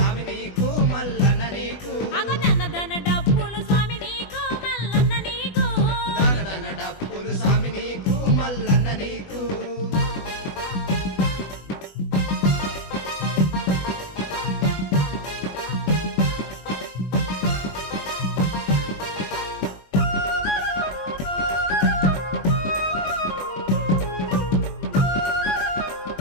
నీకు మల్లన్న నీకు అగదన డప్పులు స్వామి నీకు మల్లన్న నీకు దన డప్పులు స్వామి నీకు మల్లన్న నీకు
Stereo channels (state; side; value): late; right; 20 ms